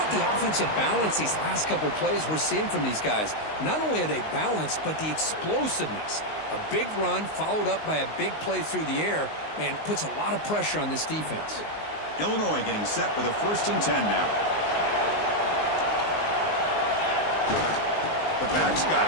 the offensive balance these last couple plays we're seeing from these guys? Not only are they balanced, but the explosiveness. A big run followed up by a big play through the air, man, puts a lot of pressure on this defense. Illinois getting set with a 1st and 10 now. The back's got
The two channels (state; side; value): late; right; 19 ms